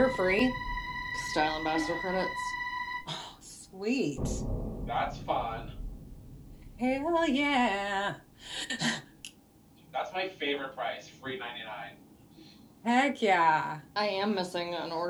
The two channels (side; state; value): both; identical; correlation 1.00